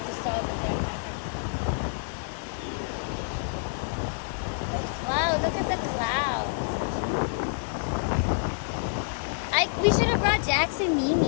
just saw over there. Wow, look at the clouds. We should have brought Jax and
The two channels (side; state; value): right; silent; 59 dB below the other